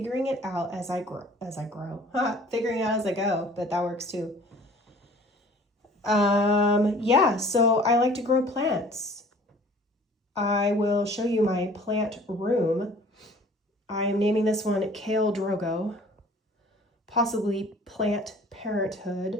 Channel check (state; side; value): normal; both; correlation 0.50